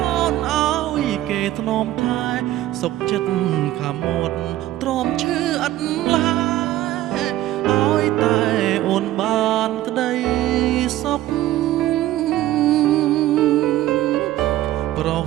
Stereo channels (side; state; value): left; quieter; 14.6 dB